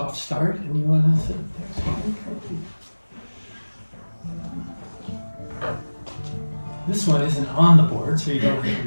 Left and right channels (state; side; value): inverted; both; correlation -1.00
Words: start. And you want to sit there? This one isn't on the board, so you don't have